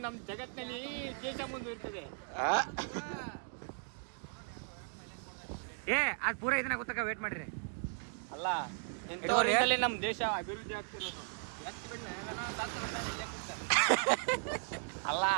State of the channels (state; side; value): silent; left; 53 dB below the other